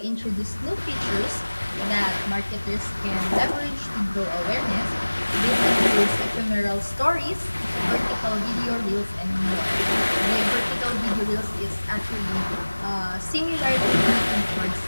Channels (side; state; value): both; inverted; correlation -1.00